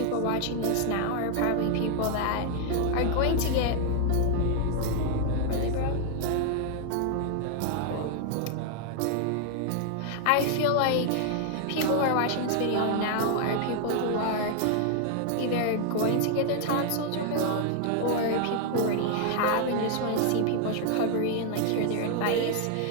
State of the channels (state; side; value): different; both; correlation 0.00